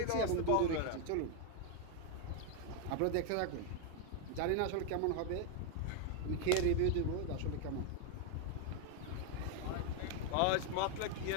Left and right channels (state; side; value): different; both; correlation 0.01